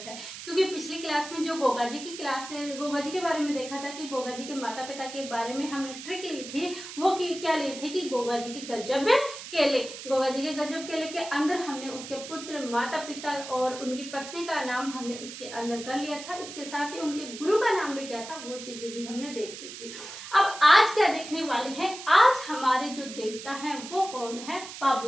है, क्योंकि पिछली क्लास में जो गोगा जी की क्लास है, गोगा जी के बारे में देखा था कि गोगा जी के माता पिता के बारे में हमने ट्रिक ली थी। वो क्या ली थी कि गोगा जी की गजब केले, गोगा जी के गजब केले के अंदर हमने उसके पुत्र, माता पिता और उनकी पत्नी का नाम हमने उसके अंदर कर लिया था। इसके साथ ही उनके गुरु का नाम भी क्या था वो चीजें भी हमने देख ली थी। अब आज क्या देखने वाले हैं, आज हमारे जो देवता हैं वो कौन है?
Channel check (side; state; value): right; noise; hiss, 11 dB below the sound